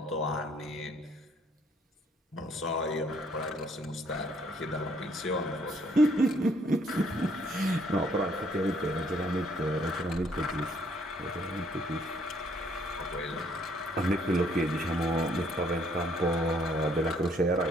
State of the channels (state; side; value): normal; both; correlation 0.65